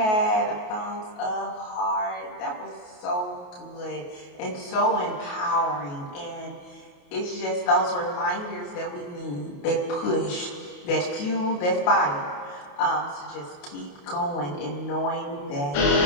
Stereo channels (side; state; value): right; late; 28 ms